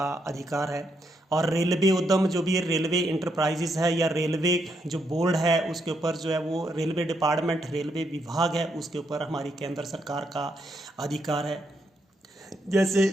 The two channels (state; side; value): normal; both; correlation 0.78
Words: अधिकार है, और रेलवे उद्यम जो भी रेलवे इंटरप्राइजेस है या रेलवे जो बोर्ड है उसके ऊपर जो है वो रेलवे डिपार्टमेंट, रेलवे विभाग है, उसके ऊपर हमारी केंद्र सरकार का अधिकार है।